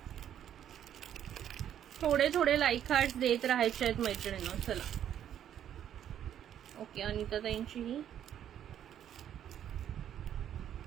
थोडे थोडे लाईक हार्ट्स देत राहायचे आहेत मैत्रिणींनो. चला. ओके, अनिता ताईंची ही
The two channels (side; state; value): left; quieter; 10.2 dB